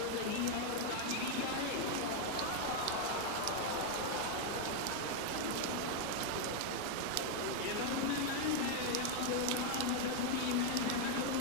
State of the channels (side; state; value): both; different; correlation 0.01